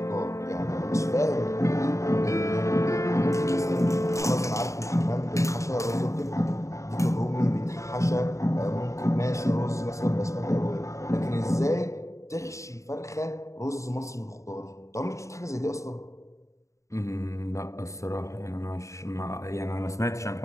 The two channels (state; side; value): late; right; 0.15 ms